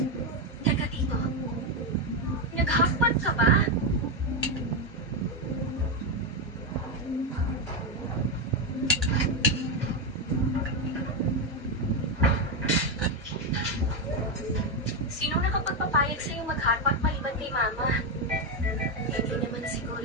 Teka, Tito. Nag-hotpot ka ba? Sinong nakapagpapayag sa'yo mag-hotpot maliban kay Mama? Hindi naman siguro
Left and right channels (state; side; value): normal; both; correlation 0.06